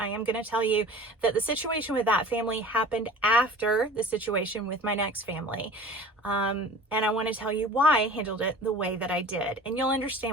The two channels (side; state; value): both; normal; correlation 0.42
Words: am going to tell you that the situation with that family happened after the situation with my next family. And I want to tell you why I handled it the way that I did. And you'll